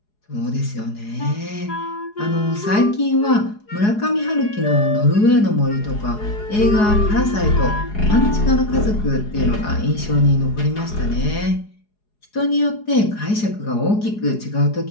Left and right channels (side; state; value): right; late; 4.8 ms